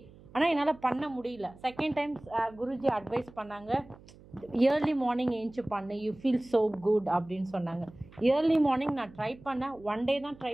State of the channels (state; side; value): noise; right; hum, 22 dB below the sound